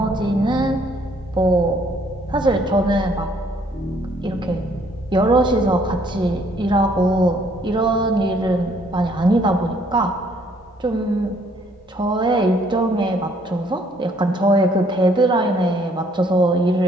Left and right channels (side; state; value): both; normal; correlation 0.64